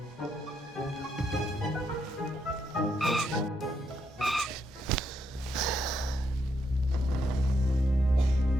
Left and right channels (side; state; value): both; normal; correlation 0.78